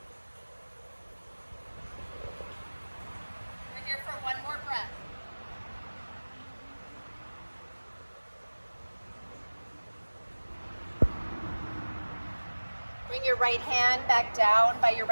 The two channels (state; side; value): inverted; both; correlation -1.00